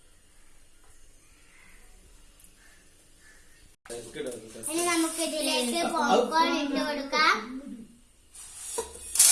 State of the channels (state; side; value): identical; both; correlation 1.00